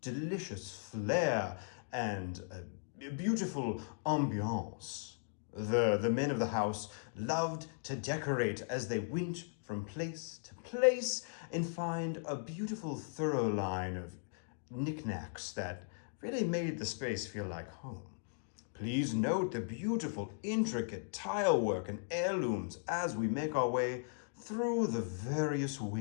delicious flair and a beautiful ambiance. The men of the house loved to decorate as they went from place to place and find a beautiful thorough line of knickknacks that really made the space feel like home. Please note the beautiful, intricate tile work and heirlooms as we make our way through the various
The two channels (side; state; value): right; silent; digital silence